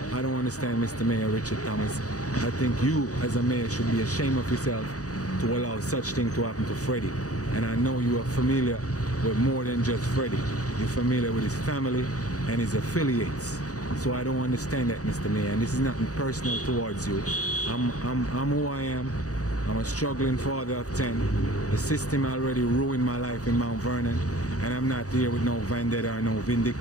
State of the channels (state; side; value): late; right; 0.66 ms